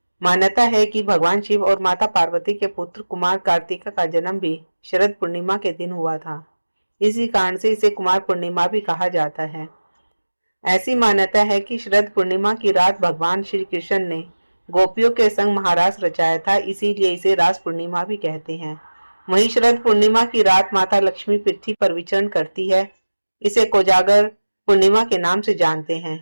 मान्यता है कि भगवान शिव और माता पार्वती के पुत्र कुमार कार्तिका का जन्म भी शरद पूर्णिमा के दिन हुआ था। इसी कारण से इसे कुमार पूर्णिमा भी कहा जाता है। ऐसी मान्यता है कि शरद पूर्णिमा की रात भगवान श्री कृष्ण ने गोपियों के संग महारास रचाया था, इसीलिए इसे रास पूर्णिमा भी कहते हैं। वहीं शरद पूर्णिमा की रात माता लक्ष्मी पृथ्वी पर विचरण करती है। इसे कोजागर पूर्णिमा के नाम से जानते हैं।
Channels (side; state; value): both; inverted; correlation -1.00